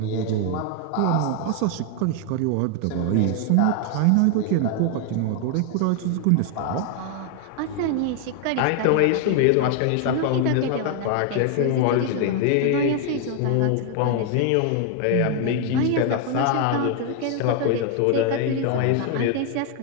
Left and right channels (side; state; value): both; different; correlation 0.00